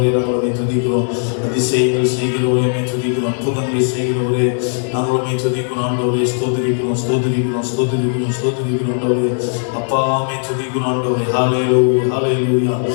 நாங்களுமே துதிக்கிறோம், அதிசயங்கள் செய்கிறவரையுமே துதிக்கிறோம், அற்புதங்களை செய்கிறவரே நாங்களுமே துதிக்கிறோம். ஆண்டவரே ஸ்தோத்திரிக்கிறோம் ஆண்டவரே. அப்பாமே துதிக்கிறோம் ஆண்டவரே. ஹல்லேலூயா ஹல்லேலூயா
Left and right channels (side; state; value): right; silent; digital silence